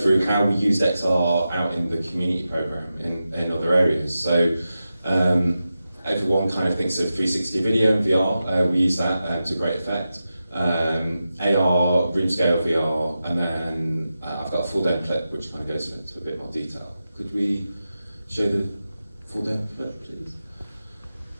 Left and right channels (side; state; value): both; inverted; correlation -0.91